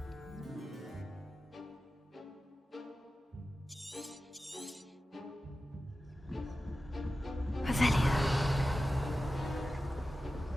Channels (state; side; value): normal; both; correlation 0.94